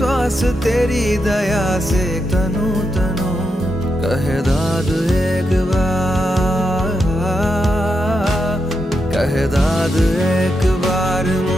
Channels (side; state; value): both; normal; correlation 0.85